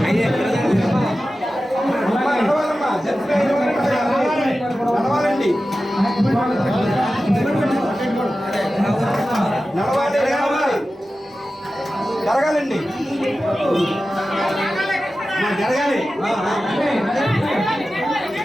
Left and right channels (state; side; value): normal; both; correlation 0.94